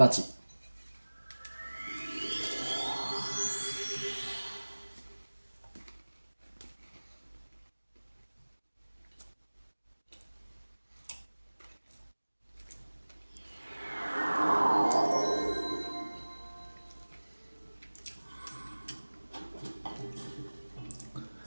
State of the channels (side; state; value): both; inverted; correlation -1.00